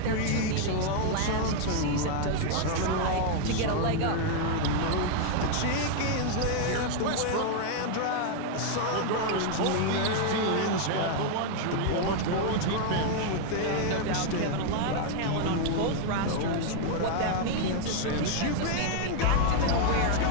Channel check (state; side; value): different; both; correlation 0.00